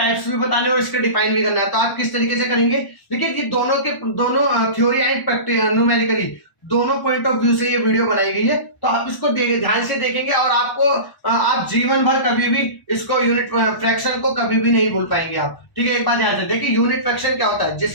भी बताने और इसके डिफाइन भी करना है। तो आप किस तरीके से करेंगे, देखिए ये दोनों थ्योरी एंड न्यूमेरिकली दोनों पॉइंट ऑफ व्यू से ये वीडियो बनाई गई है। तो आप इसको ध्यान से देखेंगे और आपको आप जीवन भर कभी भी इसको यूनिट फ्रैक्शन को कभी भी नहीं भूल पाएंगे आप। ठीक है, एक बात ध्यान से देखिए, यूनिट फ्रैक्शन क्या होता है,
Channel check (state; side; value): late; right; 1.0 ms